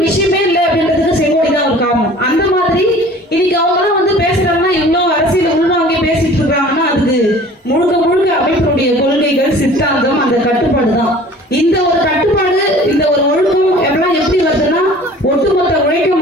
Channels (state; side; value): normal; both; correlation 0.47